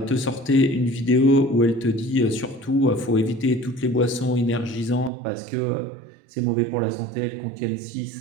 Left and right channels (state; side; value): drops out; left; at 5.1 s